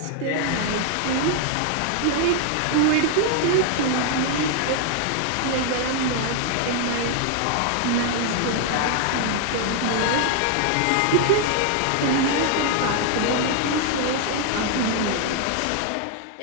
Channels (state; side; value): different; both; correlation 0.00